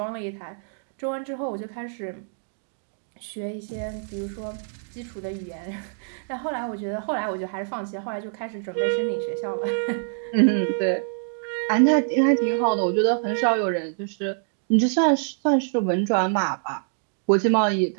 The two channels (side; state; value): left; silent; digital silence